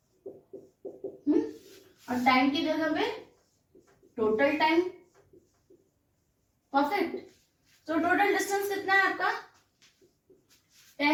और टाइम की जगह पे टोटल टाइम। परफेक्ट। तो टोटल डिस्टेंस कितना है आपका?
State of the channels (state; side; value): identical; both; correlation 1.00